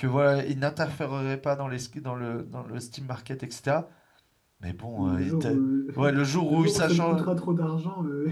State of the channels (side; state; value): both; identical; correlation 1.00